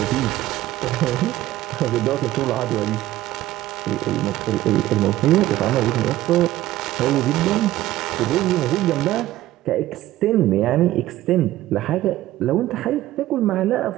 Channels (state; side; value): quieter; left; 15.2 dB